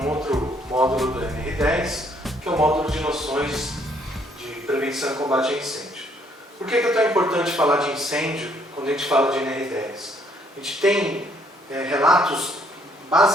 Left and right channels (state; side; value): normal; both; correlation 0.66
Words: outro módulo do NR10, que é o módulo de noções de prevenção e combate a incêndio. Por que é tão importante falar de incêndio quando a gente fala de NR10? A gente tem relatos